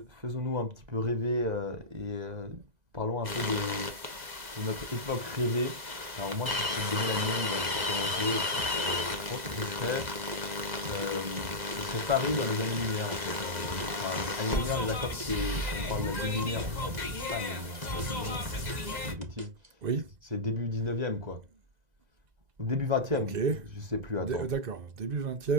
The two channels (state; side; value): late; left; 2.0 ms